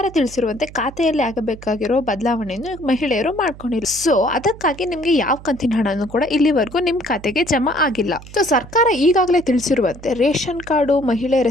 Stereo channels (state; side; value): noise; right; hum, 17 dB below the sound